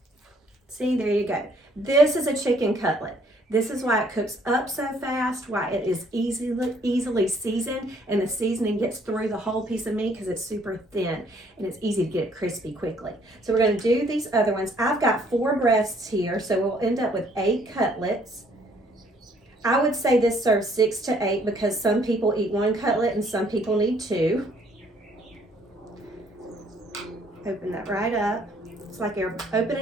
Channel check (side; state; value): both; normal; correlation 0.63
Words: See, there you go. This is a chicken cutlet. This is why it cooks up so fast, why it is easily seasoned, and the seasoning gets through the whole piece of meat because it's super thin, and it's easy to get it crispy quickly. So we're going to do these other ones. I've got 4 breasts here, so we'll end up with 8 cutlets. I would say this serves 6 to 8 because some people eat 1 cutlet and some people need 2. Open that right up. It's like you're